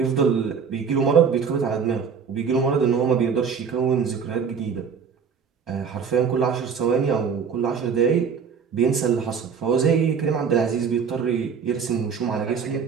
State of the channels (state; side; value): quieter; left; 6.3 dB